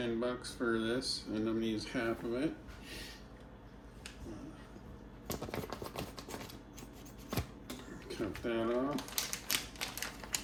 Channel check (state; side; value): identical; both; correlation 1.00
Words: for this, and I'm gonna use half of it. Cut that off.